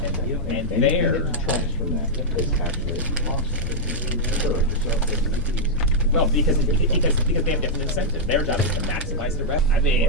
And anything there- that detracts from that is actually a cost. Well, because they have different incentive. Their job is to maximize the revenue. I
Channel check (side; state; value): both; normal; correlation -0.05